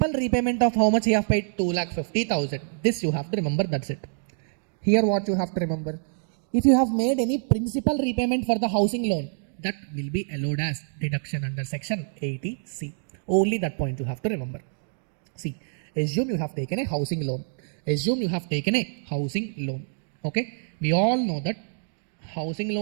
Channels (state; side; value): silent; left; digital silence